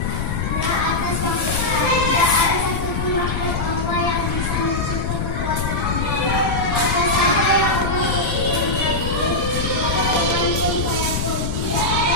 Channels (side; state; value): left; noise; rumble, 1 dB below the sound